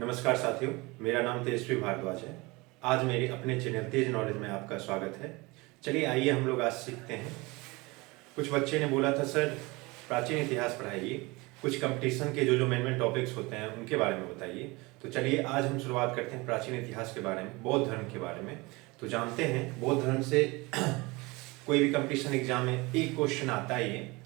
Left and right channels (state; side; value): quieter; left; 24.1 dB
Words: साथियों, मेरा नाम तेजस्वी भारद्वाज है। आज मेरे अपने चैनल तेज नॉलेज में आपका स्वागत है। चलिए आइए हम लोग आज सीखते हैं। कुछ बच्चे ने बोला था सर प्राचीन इतिहास पढ़ाइए, कुछ कंपटीशन के जो मेन टॉपिक्स होते हैं उनके बारे में बताइए। तो चलिए आज हम शुरुआत करते हैं प्राचीन इतिहास के बारे में, बौद्ध धर्म के बारे में। तो जानते हैं बौद्ध धर्म से कोई भी कंपटीशन एग्जाम में एक क्वेश्चन आता ही है।